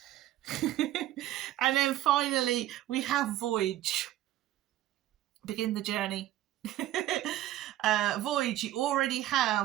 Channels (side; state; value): left; quieter; 14.0 dB